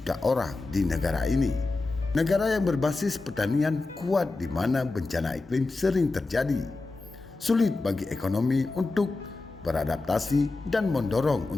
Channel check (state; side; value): quieter; right; 3.4 dB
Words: orang di negara ini. Negara yang berbasis pertanian kuat di mana bencana iklim sering terjadi. Sulit bagi ekonomi untuk beradaptasi dan mendorong